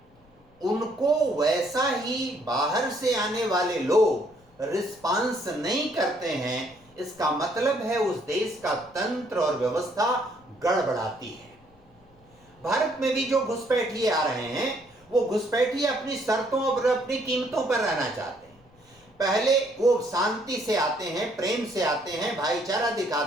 उनको वैसा ही बाहर से आने वाले लोग रिस्पांस नहीं करते हैं, इसका मतलब है उस देश का तंत्र और व्यवस्था गड़बड़ाती है। भारत में भी जो घुसपैठिए आ रहे हैं, वो घुसपैठिए अपनी शर्तों और अपनी कीमतों पर रहना चाहते हैं। पहले वो शांति से आते हैं, प्रेम से आते हैं, भाईचारा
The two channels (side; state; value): left; noise; rumble, 30 dB below the sound